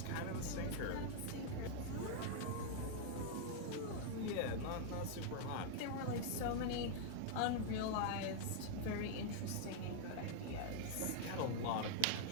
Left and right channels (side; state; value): both; different; correlation -0.01